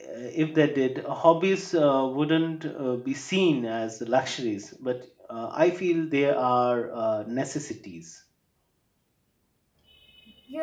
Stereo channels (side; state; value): both; identical; correlation 1.00